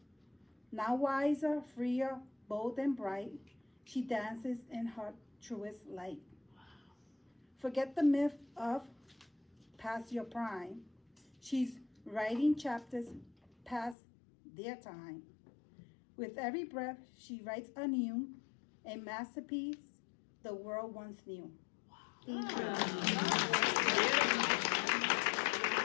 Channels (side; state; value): right; drops out; at 14.0 s